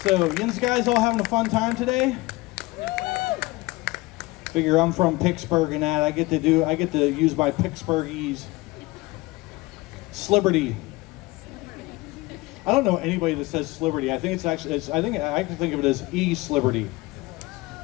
So, you guys all having a fun time today? Figure I'm from Pittsburgh and that I get to use my Pittsburghese Sliberty. I don't know anybody that says Sliberty. I think it's actually I can think of it as E-Sliberty.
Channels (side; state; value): right; quieter; 21.5 dB